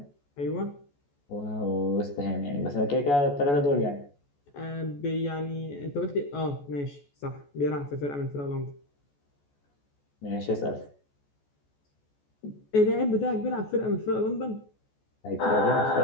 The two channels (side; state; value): right; late; 14 ms